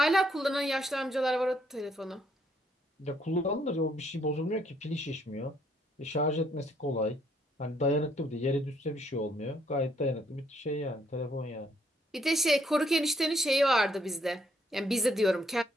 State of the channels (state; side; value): normal; both; correlation 0.69